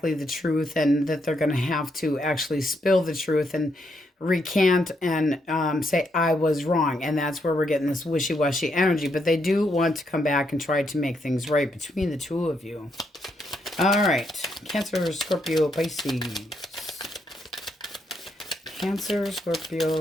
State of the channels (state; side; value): normal; both; correlation 0.77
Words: the truth, and that they're going to have to actually spill the truth and recant and say, I was wrong. And that's where we're getting this wishy-washy energy. But they do want to come back and try to make things right between the two of you. All right. Cancer, Scorpio, Pisces. Cancer,